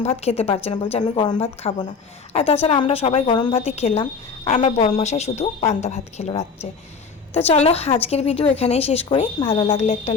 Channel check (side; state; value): right; quieter; 5.3 dB